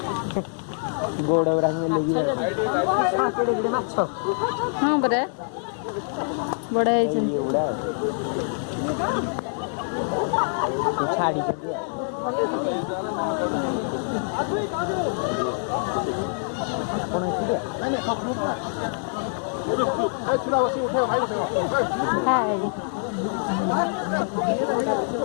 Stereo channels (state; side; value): silent; right; digital silence